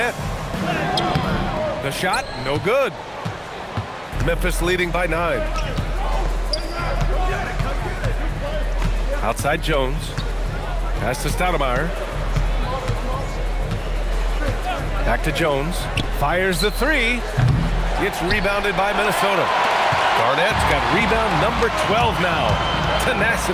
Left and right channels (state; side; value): identical; both; correlation 1.00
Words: The shot, no good. Memphis leading by 9. Outside Jones. Pass to Stoudemire. Back to Jones. Fires the 3. It's rebounded by Minnesota. Garnett's got rebound number 12 now.